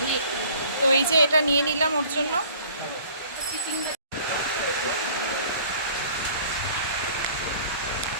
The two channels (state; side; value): inverted; both; correlation -0.51